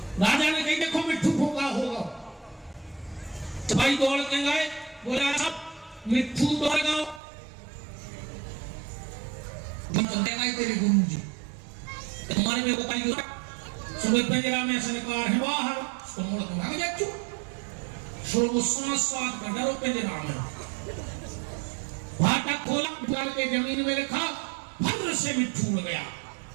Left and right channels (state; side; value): drops out; left; at 7.2 s